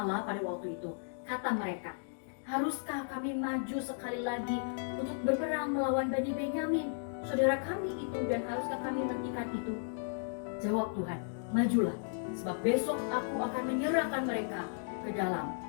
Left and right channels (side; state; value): right; silent; digital silence